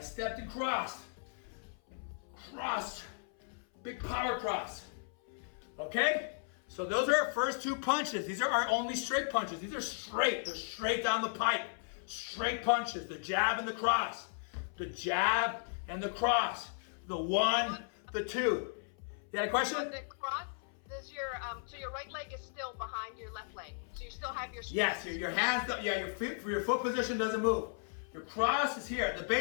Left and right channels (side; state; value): right; silent; 54 dB below the other